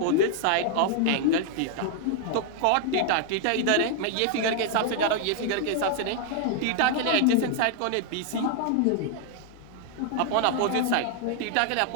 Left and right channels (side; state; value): both; different; correlation 0.00